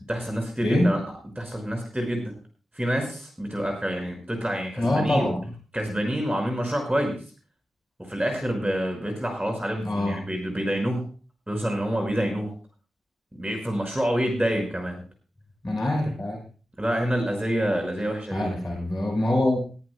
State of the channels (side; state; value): both; normal; correlation 0.93